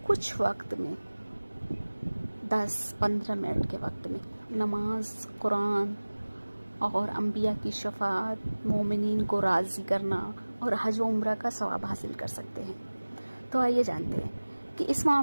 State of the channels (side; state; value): both; inverted; correlation -1.00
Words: کچھ وقت میں 10-15 منٹ کے وقت میں نماز، قرآن اور انبیاء کی شفاعت، مومنین کو راضی کرنا اور حج و عمرہ کا ثواب حاصل کر سکتے ہیں؟ تو آئیے جانتے ہیں کہ اس